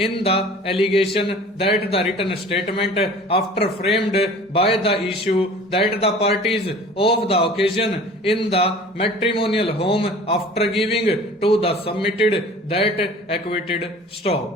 the allegation that the written statement after framed by the issue that the parties of the occasion in the matrimonial home after giving to the submitted that acquitted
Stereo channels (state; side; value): normal; both; correlation 0.45